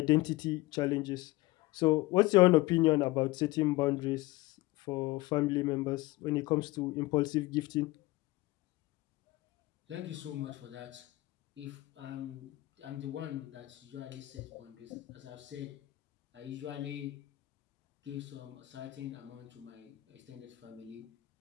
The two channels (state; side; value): quieter; right; 19.4 dB